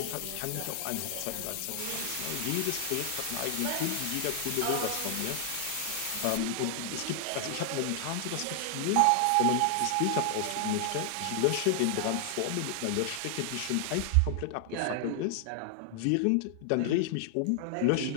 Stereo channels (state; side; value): different; both; correlation 0.00